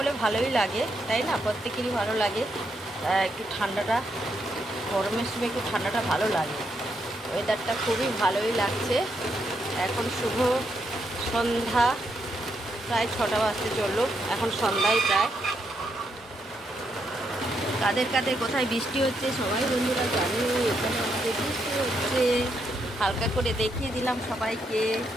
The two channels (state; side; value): normal; both; correlation 0.79